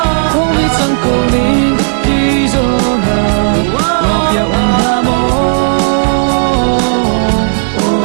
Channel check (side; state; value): left; silent; 60 dB below the other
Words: không biết rằng cô đi đi rồi na ngọc ya un ha mo